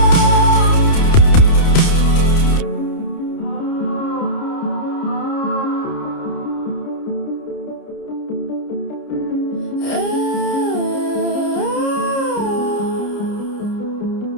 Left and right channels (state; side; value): late; right; 30 ms